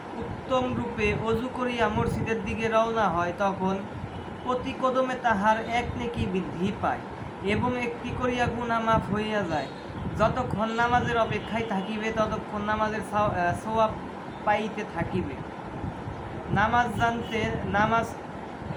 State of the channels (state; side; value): identical; both; correlation 1.00